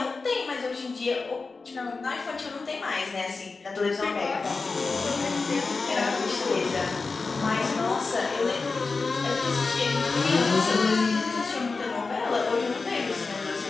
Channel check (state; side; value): quieter; right; 4.2 dB